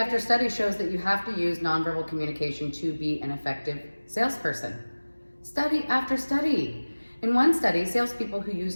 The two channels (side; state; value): both; inverted; correlation -1.00